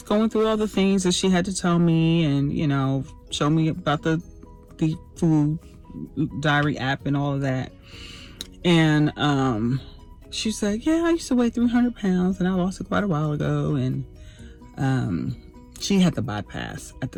going through all the things that she had to tell me, and show me about the food diary app and all of that. And she said, yeah, I used to weigh 300 pounds and I lost it quite a while ago. And she had the bypass at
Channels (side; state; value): both; identical; correlation 1.00